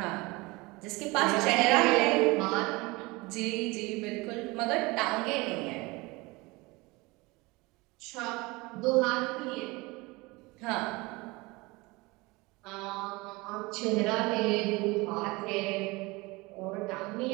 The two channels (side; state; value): left; quieter; 23.6 dB